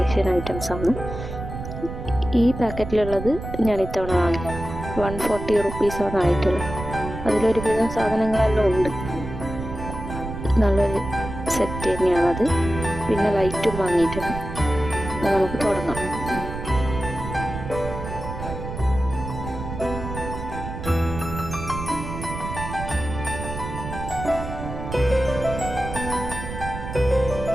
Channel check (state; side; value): noise; right; rumble, 8 dB below the sound